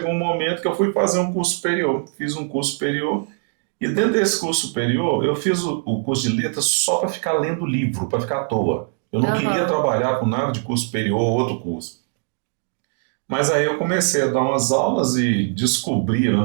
um momento que eu fui fazer um curso superior. Fiz um curso superior e dentro desse curso superior, eu fiz o curso de letras só para ficar lendo livro, para ficar à toa. Eu não queria Aham. trabalhar com nada de curso superior ou outro curso. Mas aí eu comecei a dar umas aulas e descobriram,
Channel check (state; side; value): silent; left; 59 dB below the other